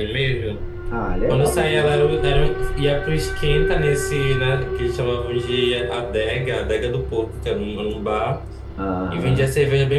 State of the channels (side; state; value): both; identical; correlation 1.00